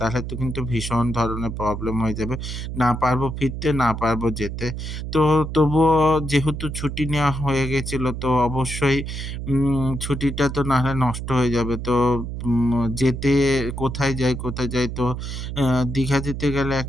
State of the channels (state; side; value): noise; right; hum, 6 dB below the sound